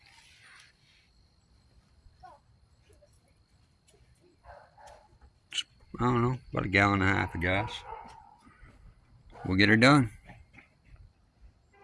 I don't know, about a gallon and a half of gas. We'll get her done.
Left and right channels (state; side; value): identical; both; correlation 1.00